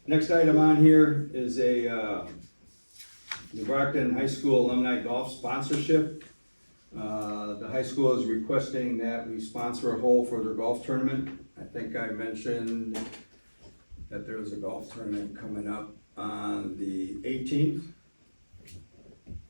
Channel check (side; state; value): both; inverted; correlation -1.00